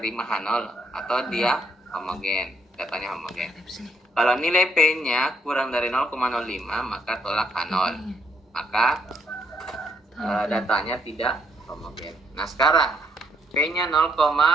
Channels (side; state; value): both; normal; correlation 0.72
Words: H0 atau dia homogen, datanya homogen. Kalau nilai P-nya kurang dari 0,05, maka tolak H0. Maka datanya tidak homogen. Nah, sekarang P-nya